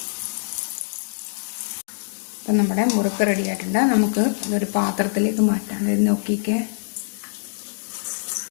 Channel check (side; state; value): right; silent; digital silence